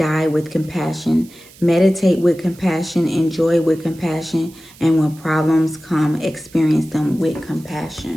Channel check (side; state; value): right; noise; hiss, 24 dB below the sound